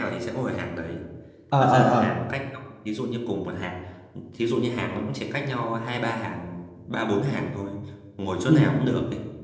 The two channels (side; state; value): both; identical; correlation 1.00